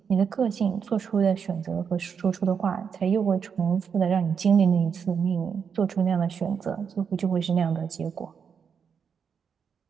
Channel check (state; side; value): quieter; left; 6.7 dB